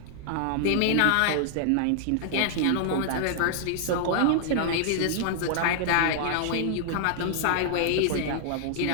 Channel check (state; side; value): different; both; correlation -0.01